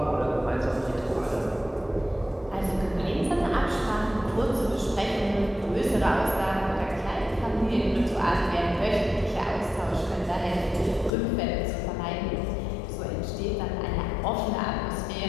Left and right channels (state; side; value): drops out; right; at 11.1 s